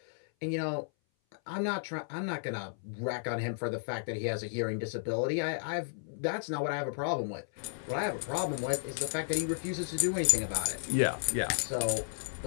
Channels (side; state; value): right; silent; 56 dB below the other